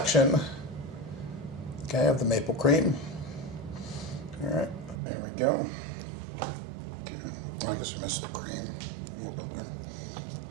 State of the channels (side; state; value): left; drops out; at 5.0 s